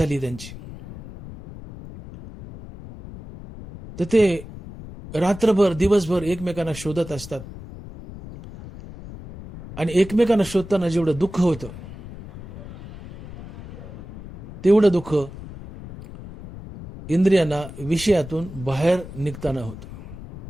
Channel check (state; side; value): noise; left; rumble, 14 dB below the sound